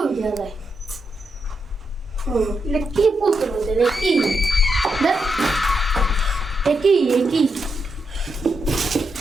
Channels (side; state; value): both; normal; correlation 0.83